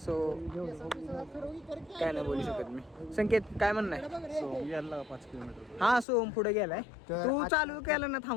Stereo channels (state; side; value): drops out; right; at 6.1 s